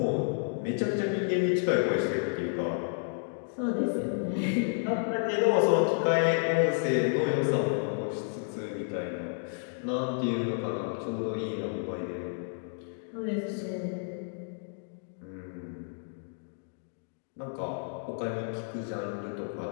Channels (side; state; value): right; silent; digital silence